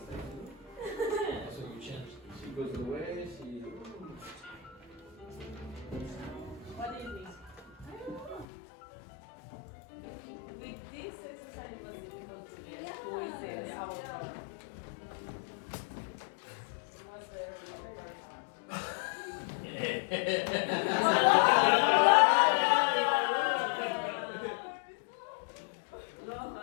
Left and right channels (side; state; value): right; drops out; at 8.5 s